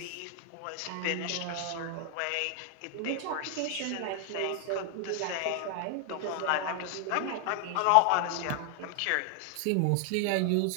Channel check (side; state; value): both; different; correlation 0.00